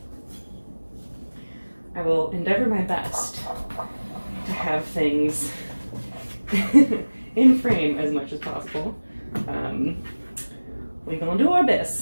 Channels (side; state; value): both; inverted; correlation -1.00